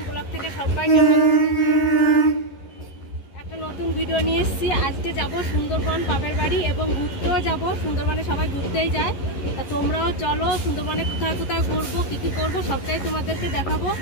blog থেকে সবাইকে একটা নতুন ভিডিও নিয়ে এসেছি। আজকে যাব সুন্দরবন বাপের বাড়ি এবং ঘুরতেও যাব। সুন্দরবনে সবাই ঘুরতেই যায়, তা তোমরাও চলো। সুন্দরবনে কোথায় কোথায় ঘুরবো, কী কী করবো সবটাই তোমাদেরকে দেখাবো।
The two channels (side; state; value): right; late; 11 ms